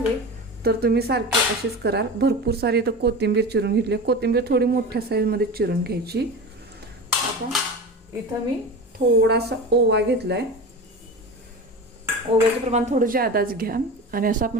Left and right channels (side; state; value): both; normal; correlation 0.29